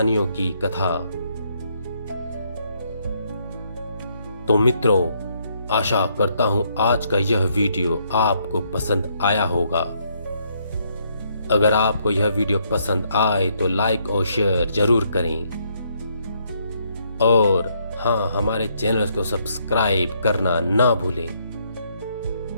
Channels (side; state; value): both; inverted; correlation -0.72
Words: की कथा। तो मित्रों, आशा करता हूं आज का यह वीडियो आपको पसंद आया होगा। अगर आपको यह वीडियो पसंद आए तो लाइक और शेयर जरूर करें। और हाँ, हमारे चैनल को सब्सक्राइब करना ना भूलें।